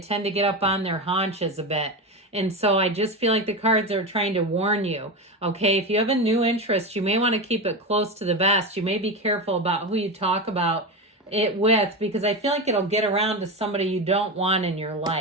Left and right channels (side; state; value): both; normal; correlation 0.18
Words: to get up on their haunches a bit. And so I just feel like the cards are trying to warn you, okay? If you have a new interest, you may want to keep it close to the vest. You may be careful about who you talk about it with, because I feel like it'll get around to somebody you don't want in your